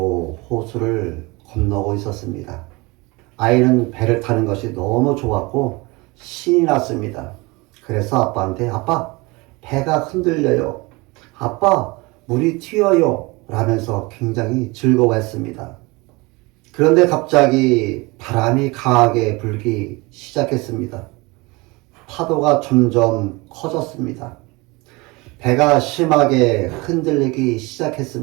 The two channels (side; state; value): left; quieter; 24.8 dB